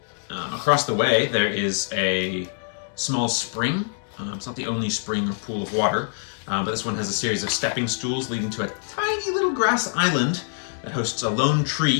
Across the way there is a small spring. It's not the only spring or pool of water, but this one has a series of stepping stools leading to a tiny little grass island that hosts a lone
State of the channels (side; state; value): right; silent; 62 dB below the other